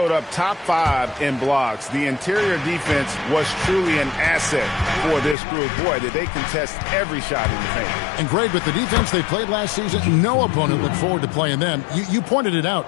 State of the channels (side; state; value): right; drops out; at 5.4 s